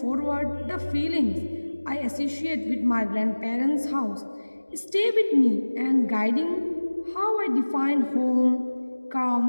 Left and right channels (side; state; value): both; inverted; correlation -1.00